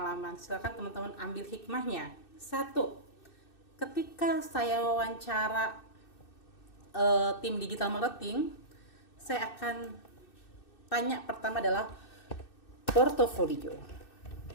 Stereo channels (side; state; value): right; late; 2.6 ms